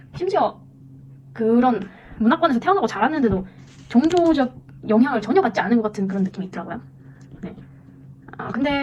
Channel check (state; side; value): identical; both; correlation 1.00